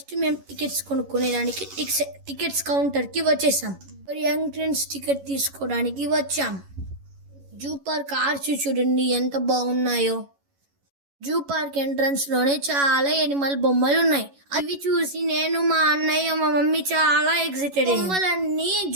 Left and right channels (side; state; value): left; late; 11 ms